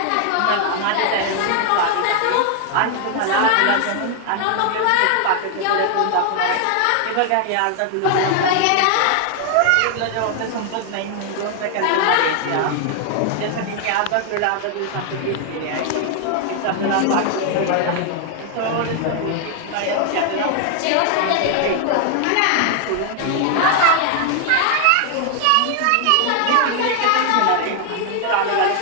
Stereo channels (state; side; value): different; both; correlation 0.00